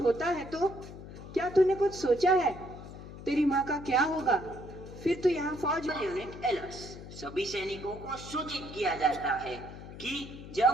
है तो क्या तूने कुछ सोचा है? तेरी माँ का क्या होगा? फिर तो यहाँ फौज में। यूनिट एलर्ट, सभी सैनिकों को सूचित किया जाता है कि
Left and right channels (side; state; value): left; noise; hum, 13 dB below the sound